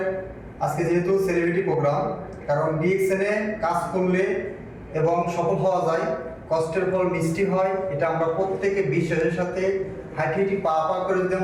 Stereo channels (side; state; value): both; identical; correlation 1.00